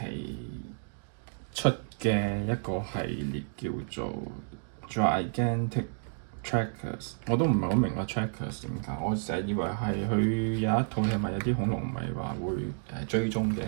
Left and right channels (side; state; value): left; silent; digital silence